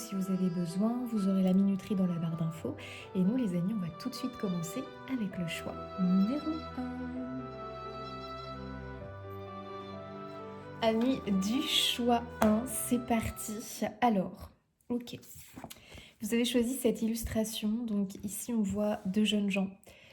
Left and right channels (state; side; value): identical; both; correlation 1.00